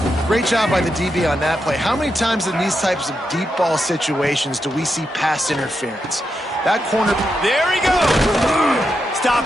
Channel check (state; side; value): normal; both; correlation 0.85